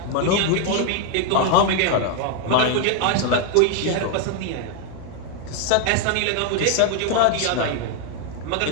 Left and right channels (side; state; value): both; different; correlation 0.01